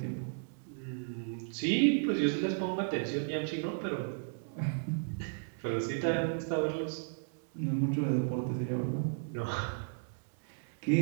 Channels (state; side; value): silent; left; digital silence